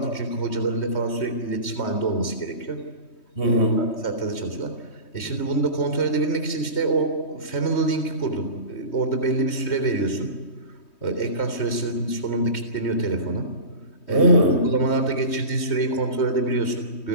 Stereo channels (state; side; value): late; right; 3.2 ms